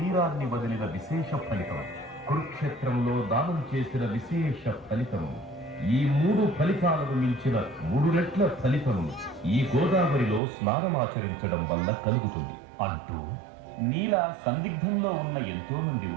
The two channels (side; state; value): left; drops out; at 10.4 s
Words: వదిలిన విశేష ఫలితం, కురుక్షేత్రంలో దానం చేసిన విశేష ఫలితం, ఈ 3 ఫలితాలను మించిన 3 రెట్ల ఫలితం ఈ గోదావరిలో స్నానమాచరించడం వల్ల కలుగుతుంది అంటూ నీలా సందిగ్ధంలో ఉన్న ఎంతో మంది